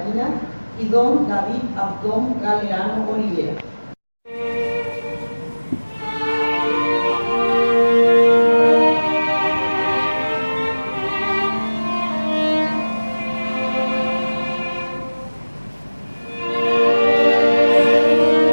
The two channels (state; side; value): inverted; both; correlation -1.00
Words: y don David Abdón Galeano Olivera.